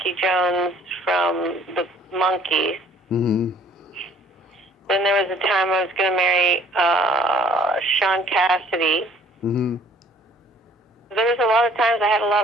Jones from the Monkees. Hmm. Then there was a time I was going to marry Sean Cassidy. Hmm. There was a lot of times I had a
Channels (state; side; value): normal; both; correlation 0.57